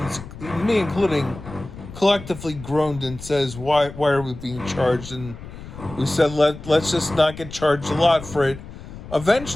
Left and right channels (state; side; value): noise; left; rumble, 14 dB below the sound